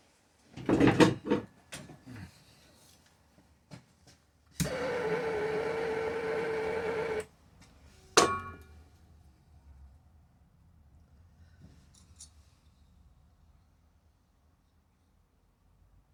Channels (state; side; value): identical; both; correlation 1.00